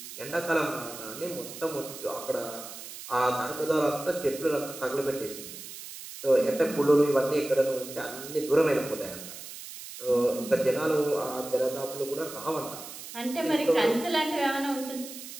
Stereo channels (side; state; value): right; noise; hiss, 12 dB below the sound